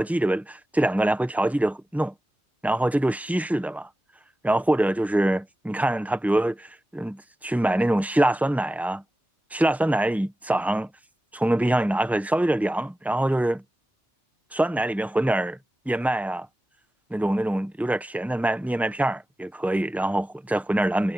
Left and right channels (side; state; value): both; normal; correlation 0.95